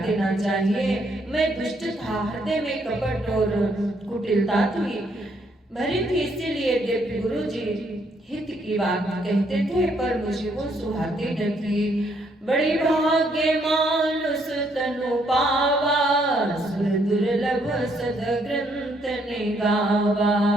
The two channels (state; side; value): normal; both; correlation 0.71